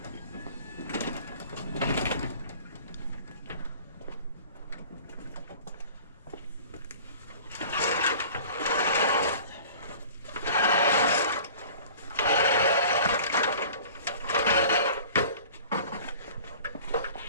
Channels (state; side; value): inverted; both; correlation -0.44